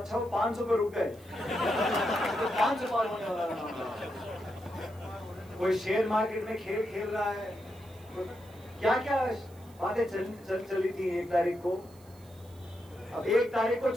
वो 500 पे रुक गए। तो 500 पार होने वाला था। कोई शेयर मार्केट में खेल खेल रहा है, तो क्या क्या बातें चली थी 1 तारीख को। अब 1 तारीख को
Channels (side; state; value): right; noise; hiss, 26 dB below the sound